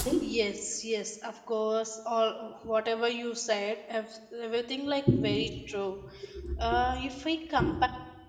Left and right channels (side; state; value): both; identical; correlation 1.00